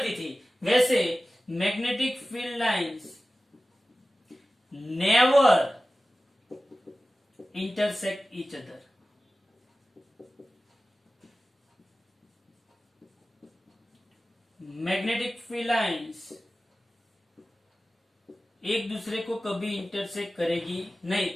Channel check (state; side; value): normal; both; correlation 0.96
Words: थी, वैसे magnetic field lines never intersect each other. Magnetic field lines एक दूसरे को कभी इंटरसेक्ट करेगी नहीं।